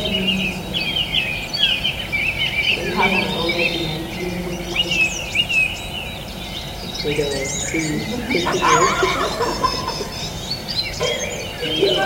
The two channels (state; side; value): identical; both; correlation 1.00